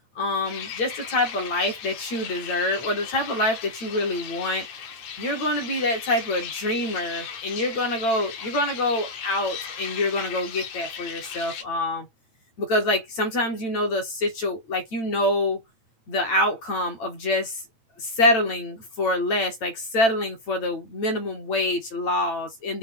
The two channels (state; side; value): late; right; 8.9 ms